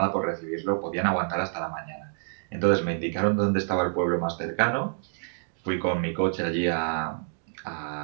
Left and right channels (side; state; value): left; silent; digital silence